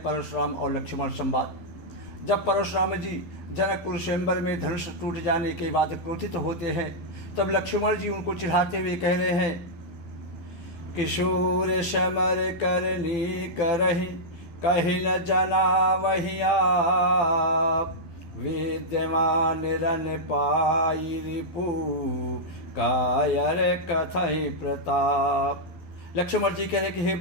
और लक्ष्मण संवाद। जब परशुराम जी जनकपुर स्वयंवर में धनुष टूट जाने के बाद क्रोधित होते हैं, तब लक्ष्मण जी उनको चिढ़ाते हुए कह रहे हैं, किशोर समर करनी करहि कहीं न जना वही आप, विद्यमान रन पाई रिपु कायर कथई प्रताप। लक्ष्मण जी कह रहे कि हे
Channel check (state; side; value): late; right; 12 ms